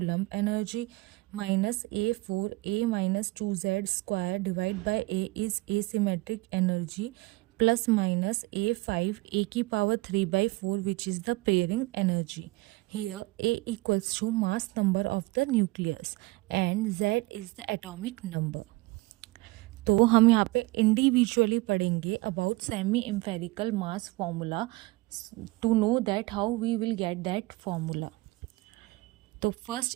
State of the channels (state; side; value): quieter; left; 22.1 dB